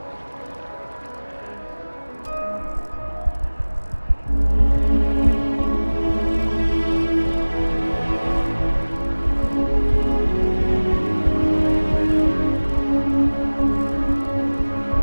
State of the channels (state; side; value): inverted; both; correlation -1.00